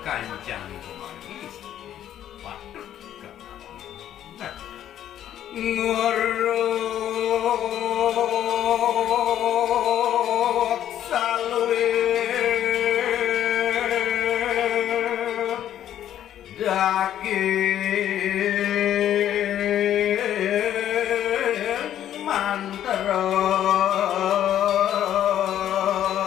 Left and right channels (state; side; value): quieter; right; 11.1 dB